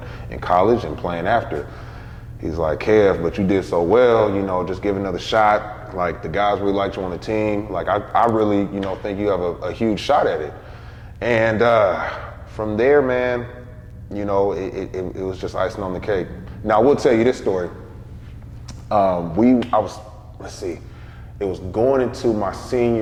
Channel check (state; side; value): identical; both; correlation 1.00